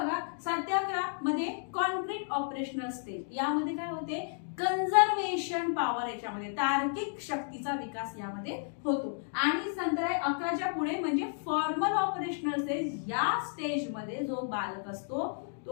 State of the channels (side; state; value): right; silent; digital silence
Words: 7 ते 11 मध्ये कॉन्क्रीट ऑपरेशनल स्टेज, यामध्ये काय होते कन्झर्वेशन पॉवर, याच्यामध्ये तार्किक शक्तीचा विकास यामध्ये होतो। आणि नंतर 11च्या पुढे म्हणजे फॉर्मल ऑपरेशनल स्टेज। या स्टेज मध्ये जो बालक असतो